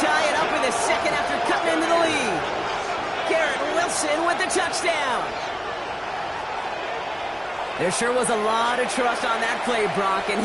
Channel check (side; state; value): both; identical; correlation 1.00